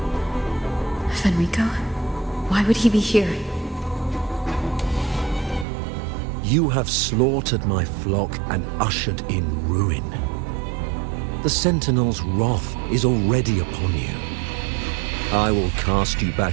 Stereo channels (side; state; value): left; drops out; at 5.7 s